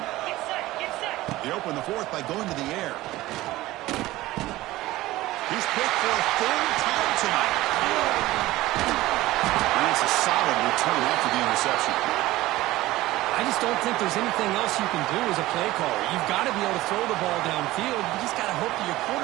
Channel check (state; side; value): quieter; left; 17.5 dB